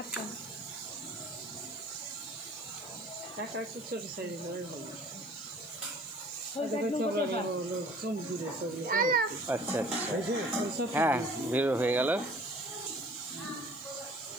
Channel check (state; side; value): noise; left; hiss, 23 dB below the sound